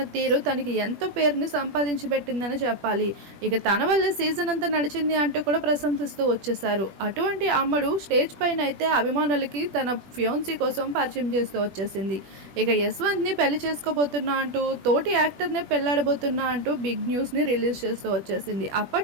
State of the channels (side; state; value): left; late; 21 ms